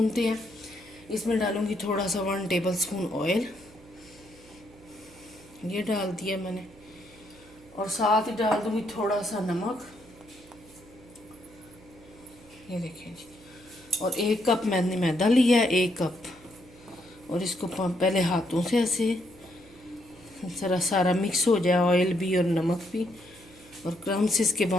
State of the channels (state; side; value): noise; right; hum, 24 dB below the sound